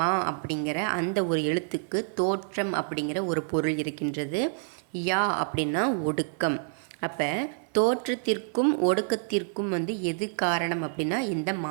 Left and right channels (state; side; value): silent; left; digital silence